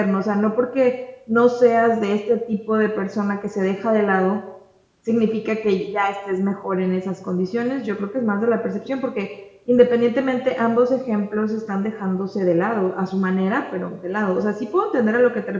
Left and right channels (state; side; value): identical; both; correlation 1.00